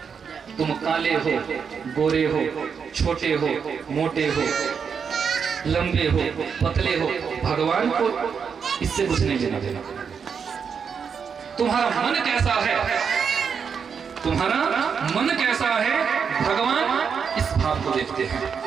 तुम काले हो, गोरे हो, छोटे हो, मोटे हो, लंबे हो, पतले हो, भगवान को इससे कुछ नहीं लेना देना। तुम्हारा मन कैसा है, तुम्हारा मन कैसा है, भगवान इस भाव को देखते हैं।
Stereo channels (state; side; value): quieter; left; 6.5 dB